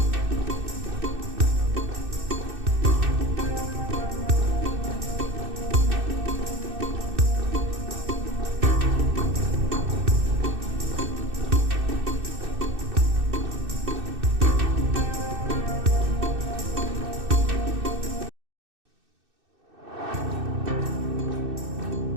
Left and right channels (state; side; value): late; left; 2.6 ms